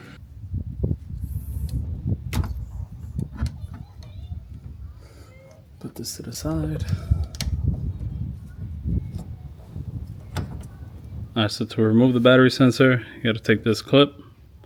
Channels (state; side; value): identical; both; correlation 1.00